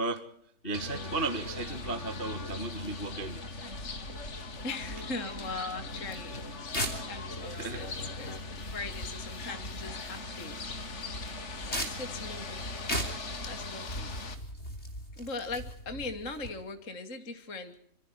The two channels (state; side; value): late; right; 3.2 ms